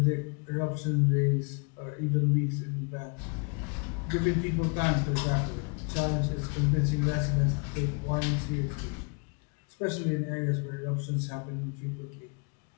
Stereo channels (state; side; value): quieter; right; 35.8 dB